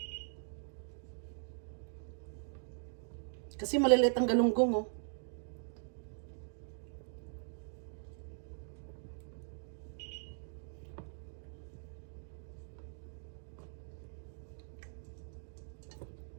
Kasi maliliit ang galunggong, oh.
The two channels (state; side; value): silent; left; digital silence